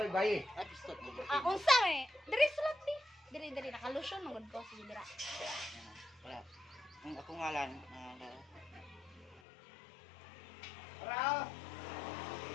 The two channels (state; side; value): drops out; right; at 9.4 s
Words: bayi. Ay, pistot mo. Ah, unsa eh? Diri sulat di. Diri nakalusyon magud ko sige dira. Wala. Ang ako ngalan. Para!